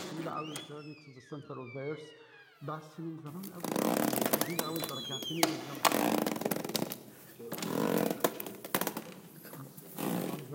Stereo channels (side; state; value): both; identical; correlation 1.00